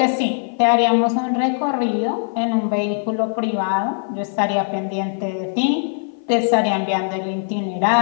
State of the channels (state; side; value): silent; right; 55 dB below the other